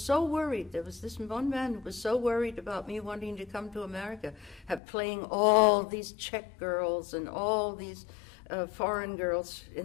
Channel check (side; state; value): right; drops out; at 4.8 s